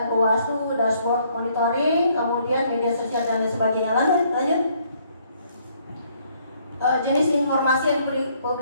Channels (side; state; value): both; inverted; correlation -0.67